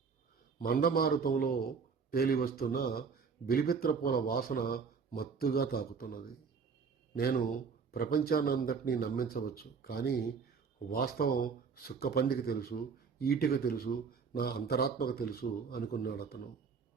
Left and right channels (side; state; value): left; quieter; 5.6 dB